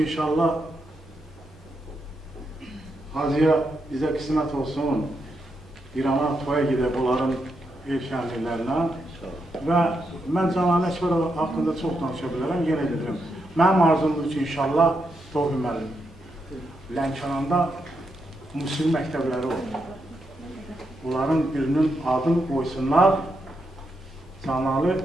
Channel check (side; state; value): both; normal; correlation 0.82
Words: inşallah Hacıya bizə qismət olsun, İrana toya gedib onların ev şənliklərinə. Və mən Cəlal Əkbərov haqqında çox danışa bilərəm, yenə gedirəm. Mənim arzumdur ki, inşallah Tofi müəllim Lənkəranda musiqi məktəbləri olur. Bunların birinin adını qoysunlar Cəlal